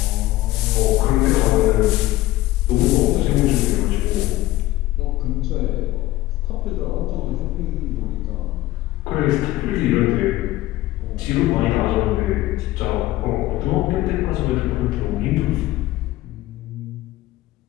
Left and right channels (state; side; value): quieter; right; 16.8 dB